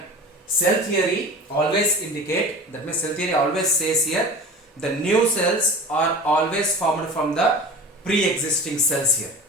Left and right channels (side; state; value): both; normal; correlation 0.36